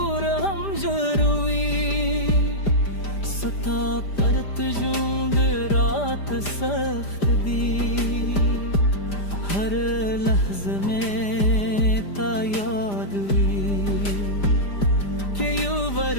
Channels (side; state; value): right; late; 5.0 ms